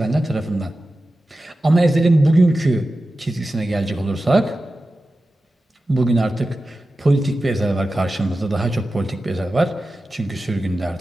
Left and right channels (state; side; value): normal; both; correlation 0.93